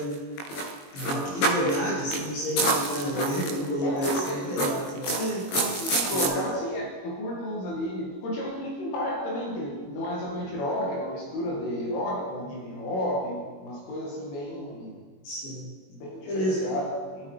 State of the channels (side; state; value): right; late; 21 ms